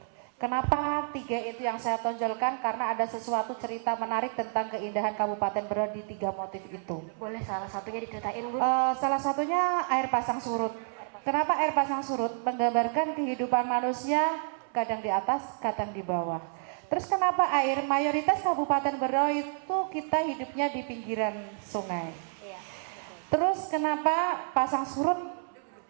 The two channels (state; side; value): silent; left; 58 dB below the other